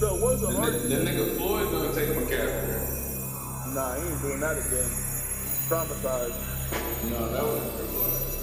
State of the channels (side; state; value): both; identical; correlation 1.00